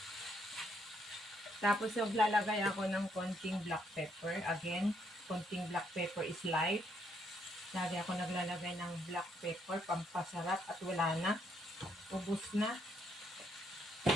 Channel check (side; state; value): both; normal; correlation 0.72